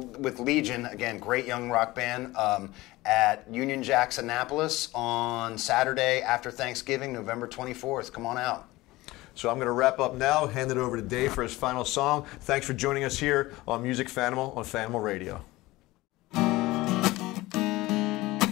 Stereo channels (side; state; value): right; quieter; 19.3 dB